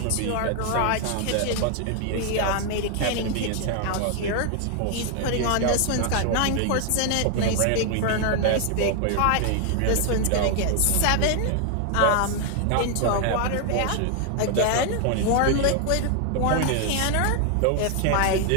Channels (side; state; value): both; different; correlation 0.00